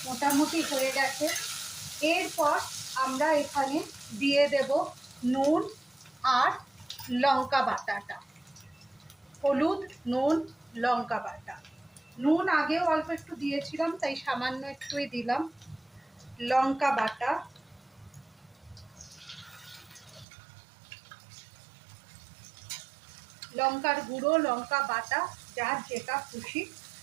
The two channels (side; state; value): left; drops out; at 20.2 s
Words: মোটামুটি হয়ে গেছে। এরপর আমরা এখানে দিয়ে দেব নুন আর লঙ্কা বাটাটা। হলুদ, নুন, লঙ্কা বাটা। নুন আগেও অল্প একটু দিয়েছিলাম, তাই সামান্য একটুই দিলাম। লঙ্কা বাটা, লঙ্কার গুঁড়ো, লঙ্কা বাটা, যার যেটা খুশি